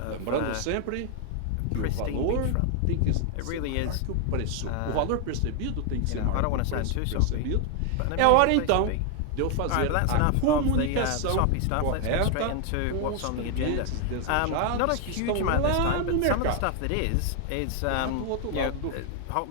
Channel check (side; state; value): both; different; correlation 0.00